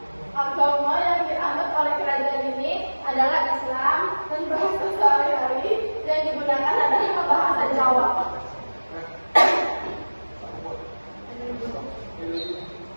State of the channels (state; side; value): inverted; both; correlation -1.00